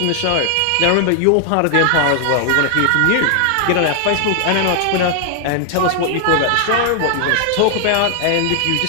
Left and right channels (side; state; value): both; different; correlation 0.00